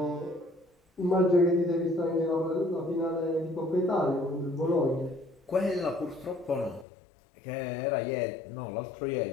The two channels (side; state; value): right; drops out; at 6.9 s